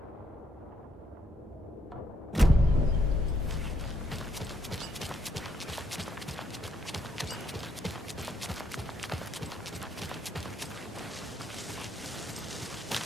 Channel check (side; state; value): both; normal; correlation 0.74